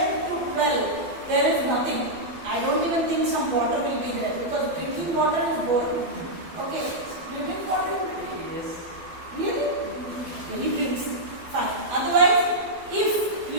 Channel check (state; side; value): late; left; 12 ms